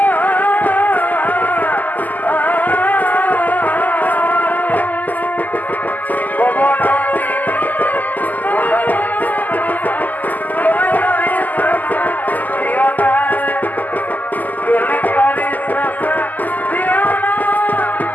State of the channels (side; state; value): right; late; 0.083 ms